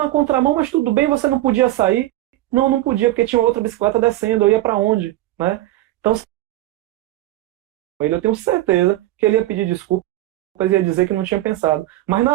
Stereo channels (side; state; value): left; quieter; 16.1 dB